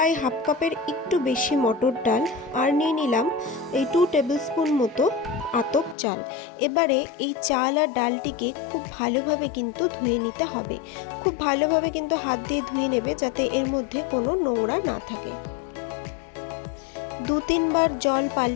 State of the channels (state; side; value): drops out; right; at 6.0 s